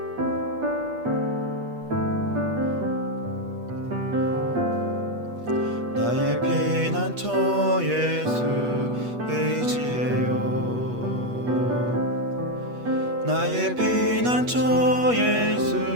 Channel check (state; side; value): late; left; 8.3 ms